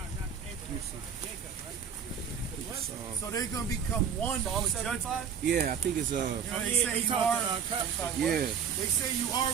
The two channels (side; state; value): left; quieter; 7.2 dB